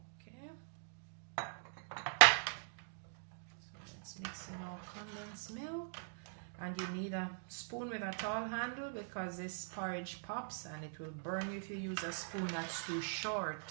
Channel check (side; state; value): left; silent; digital silence